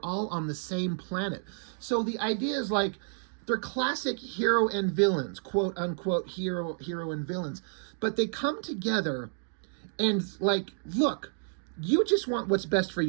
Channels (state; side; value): silent; left; digital silence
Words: all on the same planet. So the idea is like, they're classic hero and villains, quote unquote hero and villains. But they come together and like, look, you just want what's best for